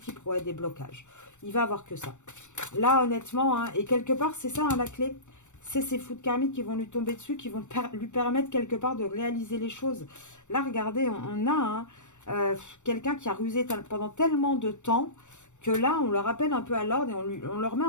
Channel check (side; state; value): right; late; 0.84 ms